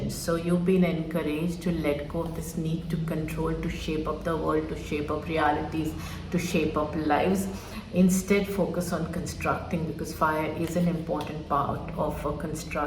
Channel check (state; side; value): identical; both; correlation 1.00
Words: So you've been encouraged to let go of this need to control, to shape up the world, to shape up realities, to shape up lives. Instead, focus on constructing, because fire is an important part of a